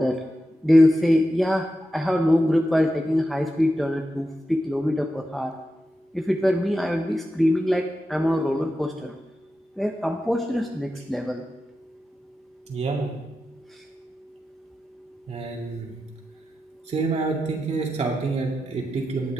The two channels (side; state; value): both; normal; correlation 0.90